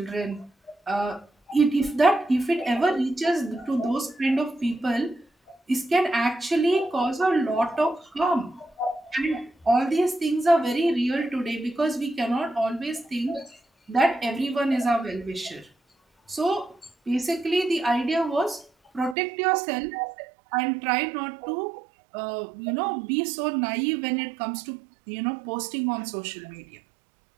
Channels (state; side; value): drops out; left; at 19.2 s